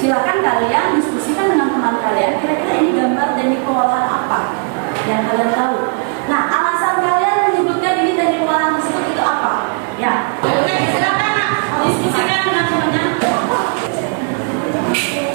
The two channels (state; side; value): quieter; left; 39.8 dB